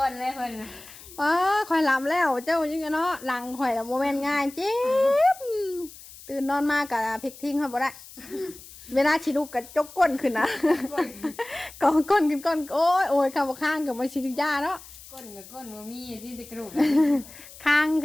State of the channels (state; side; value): noise; left; hiss, 18 dB below the sound